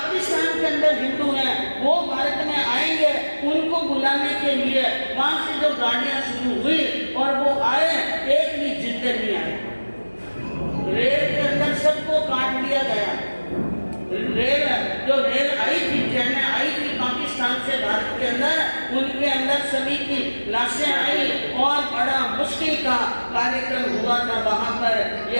के अंदर हिंदू हैं वो भारत में आएंगे, उनको बुलाने के लिए वहां से जो गाड़ियां शुरू हुई और वो आए, एक भी जिंदे नहीं आए। रेल के अंदर सबको काट दिया गया। रेल आई थी, ट्रेनें आई थी पाकिस्तान से भारत के अंदर, उनके अंदर सभी की लाशें आई और बड़ा मुश्किल का कार्यक्रम हुआ था। वहां पर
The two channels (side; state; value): both; inverted; correlation -1.00